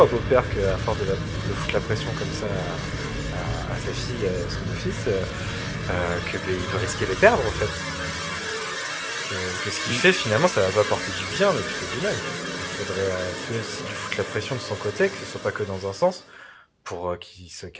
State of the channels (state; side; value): identical; both; correlation 1.00